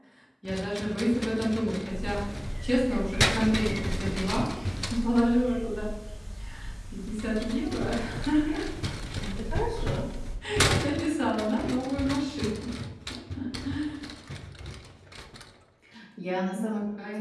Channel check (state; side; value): identical; both; correlation 1.00